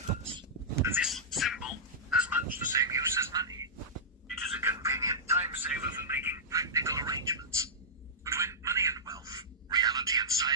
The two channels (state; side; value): normal; both; correlation -0.13